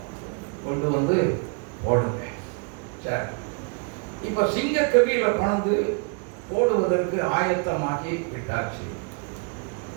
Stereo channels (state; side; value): quieter; left; 36.5 dB